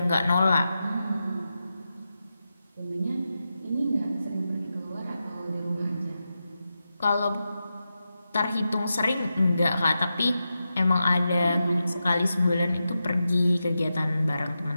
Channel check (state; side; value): inverted; both; correlation -0.90